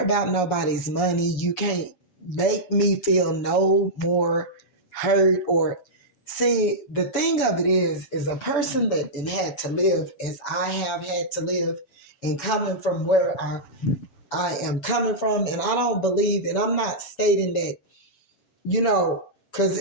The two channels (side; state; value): right; late; 7.1 ms